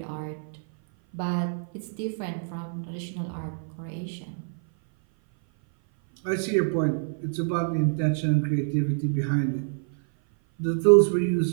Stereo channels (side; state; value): left; silent; 57 dB below the other